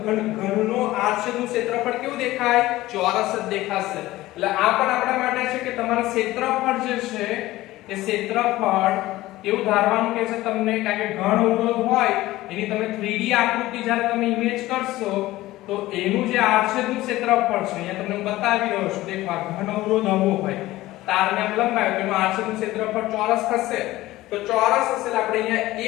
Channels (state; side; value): quieter; right; 17.1 dB